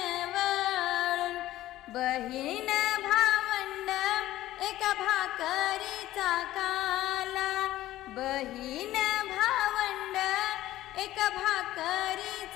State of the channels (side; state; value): right; quieter; 14.9 dB